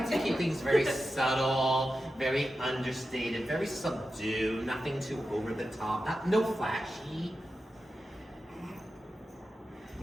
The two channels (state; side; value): normal; both; correlation 0.91